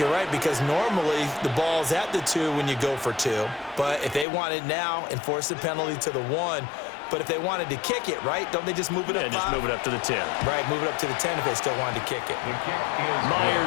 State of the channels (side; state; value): right; drops out; at 4.2 s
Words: right, because normally the ball's at the 2 when you go for 2. But if they want it now, enforce the penalty to the 1. But if they wanted to kick it, right, don't they just move it up 5? Yeah, just move it up to the 10. Right, move it up to the 10 if they still wanted to kick it.